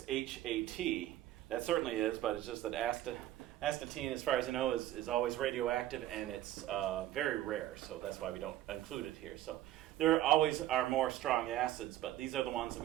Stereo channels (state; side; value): quieter; left; 13.9 dB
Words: HAT. That certainly is, but it's just that astatine, as far as I know, is always radioactive, and it's very rare, so that's why we don't include it here. So there always are more strong acids, but these are the ones that